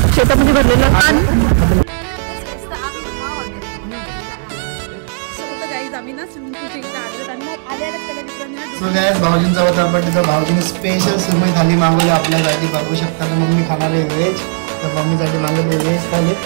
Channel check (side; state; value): left; silent; digital silence